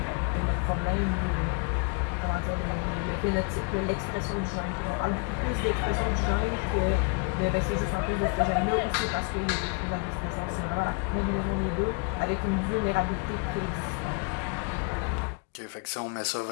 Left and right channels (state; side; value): quieter; right; 35.4 dB